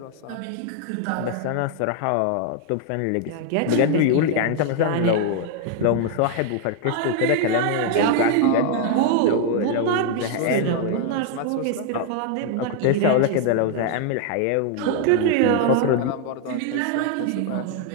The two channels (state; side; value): different; both; correlation 0.00